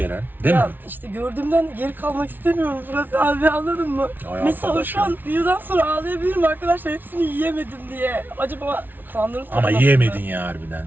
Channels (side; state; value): left; late; 0.090 ms